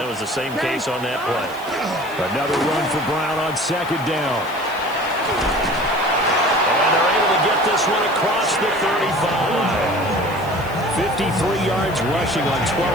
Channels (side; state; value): right; noise; hiss, 21 dB below the sound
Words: was the same case on that play. Another run for Brown on second down. And they're able to get this one across the 35. 53 yards rushing on